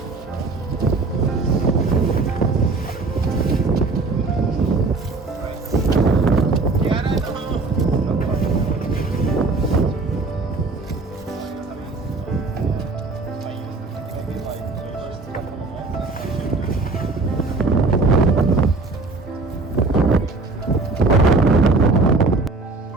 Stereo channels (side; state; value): left; quieter; 3.5 dB